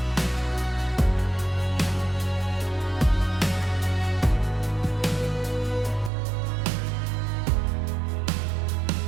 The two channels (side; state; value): left; drops out; at 6.1 s